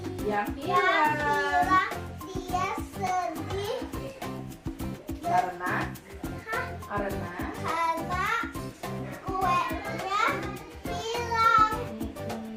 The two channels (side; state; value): both; identical; correlation 1.00